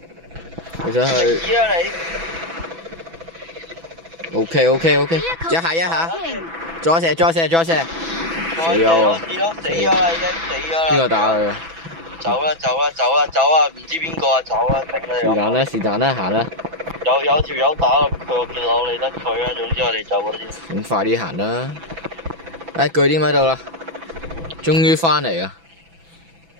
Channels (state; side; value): late; left; 6.0 ms